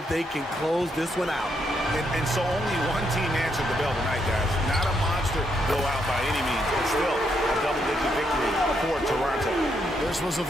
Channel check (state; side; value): normal; both; correlation 0.77